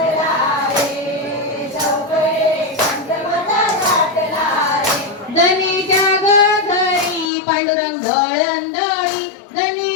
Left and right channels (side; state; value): right; drops out; at 7.3 s